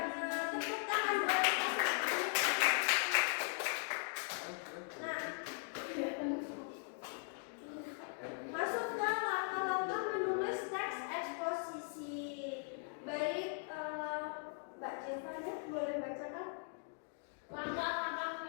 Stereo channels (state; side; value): silent; right; 51 dB below the other